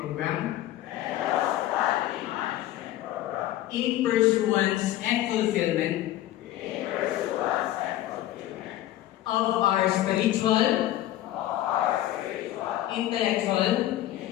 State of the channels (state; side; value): quieter; right; 14.2 dB